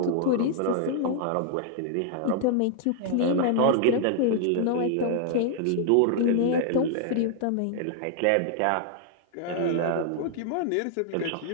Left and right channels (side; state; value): both; different; correlation -0.01